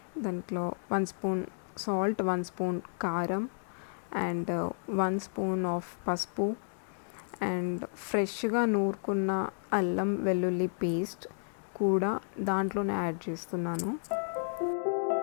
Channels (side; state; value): right; silent; digital silence